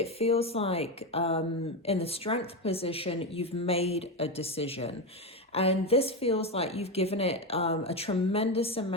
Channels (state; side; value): normal; both; correlation 0.13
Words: feels like in the strength position, you've made a decision. And this feels like you've given it a tremendous